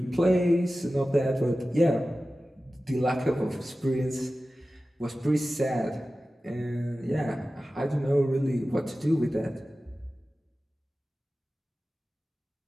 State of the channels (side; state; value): both; normal; correlation 0.95